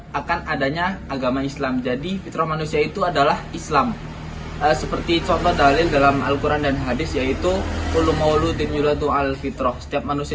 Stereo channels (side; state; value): both; identical; correlation 1.00